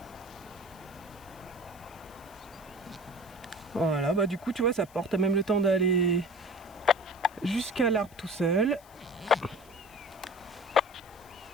Voilà, bah du coup, tu vois, ça porte même le temps d'aller jusqu'à l'arbre tout seul.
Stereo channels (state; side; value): noise; left; hiss, 26 dB below the sound